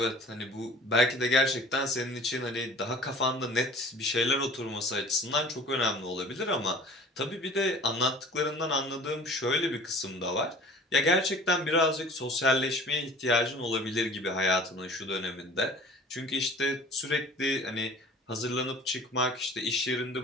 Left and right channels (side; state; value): both; normal; correlation 0.46